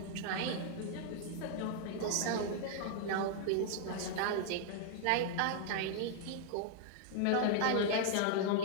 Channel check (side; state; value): both; different; correlation -0.01